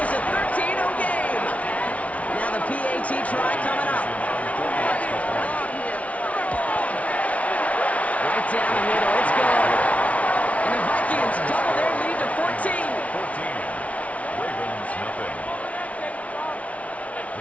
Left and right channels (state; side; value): late; right; 0.066 ms